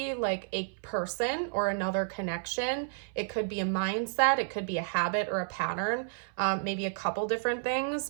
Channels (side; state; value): left; silent; 57 dB below the other